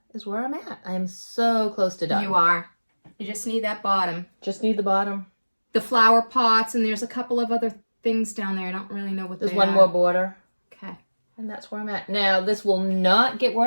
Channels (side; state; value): both; inverted; correlation -1.00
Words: is where I'm at. I'm so close to done. You are. You just need that bottom. Just need the bottom. The flower pots, and there's a couple of other things down there. I don't really know what There's they one are. more border. Okay. And that's where I'm at. Now, this will not get